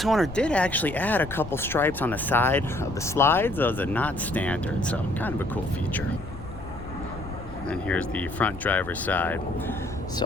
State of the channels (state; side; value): noise; left; rumble, 12 dB below the sound